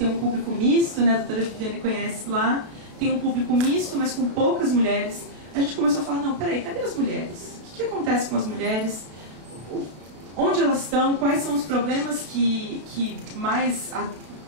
um público misto, né, a doutora Viviane conhece lá, tem um público misto, mas com poucas mulheres. A gente começou a falar, não, peraí, cadê as mulheres? O que acontece com as mulheres? Onde elas estão? Quais são os problemas que mais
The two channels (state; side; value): late; left; 33 ms